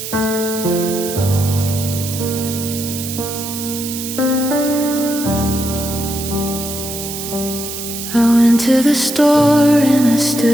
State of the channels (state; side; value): noise; right; hiss, 7 dB below the sound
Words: To the store and I